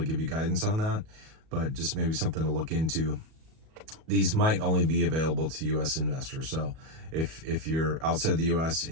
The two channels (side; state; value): left; late; 37 ms